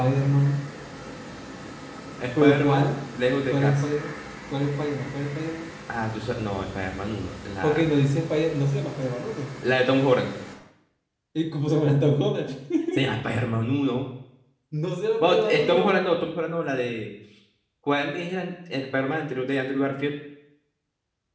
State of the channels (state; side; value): identical; both; correlation 1.00